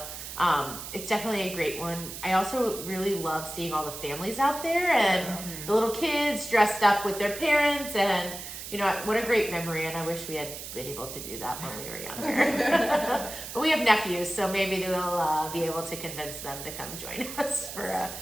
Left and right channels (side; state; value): right; noise; hiss, 9 dB below the sound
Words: it's definitely a great one. I also really love seeing all the families out there and the little kids dressed up with their parents, and what a great memory, and I wish we had been able to do that when we were younger. But we have nephews, so maybe we'll be able to convince them to come join us for